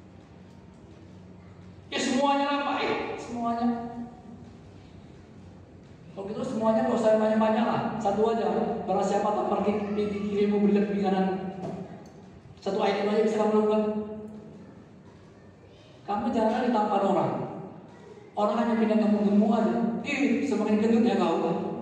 Ya semuanya lah Pak, semuanya. Kalau gitu semuanya nggak usah banyak-banyak lah, satu aja. Barang siapa tak pergi kirimu berikan di kanan. Satu item aja bisa kamu lakukan. Kamu jangan ditampar orang. Orang hanya pindah kamu gemuk aja. Semakin gendut ya kau,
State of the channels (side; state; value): both; identical; correlation 1.00